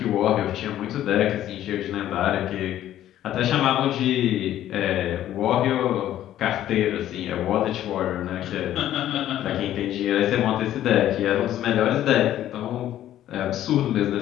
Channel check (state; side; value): quieter; right; 12.4 dB